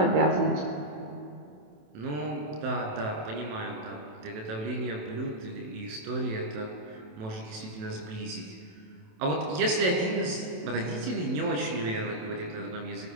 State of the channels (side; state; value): left; late; 27 ms